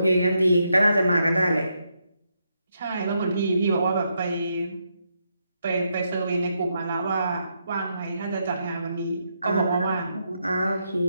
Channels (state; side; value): inverted; both; correlation -0.80